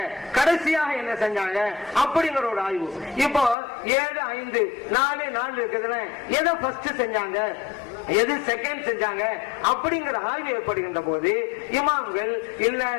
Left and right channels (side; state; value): right; drops out; at 3.6 s